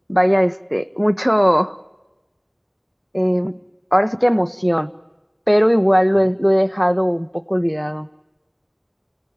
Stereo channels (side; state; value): both; identical; correlation 1.00